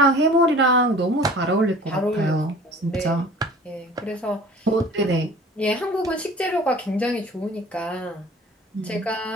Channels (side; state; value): both; normal; correlation 0.44